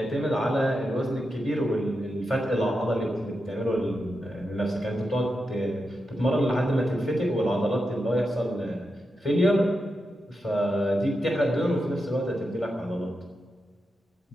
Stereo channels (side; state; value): both; normal; correlation 0.88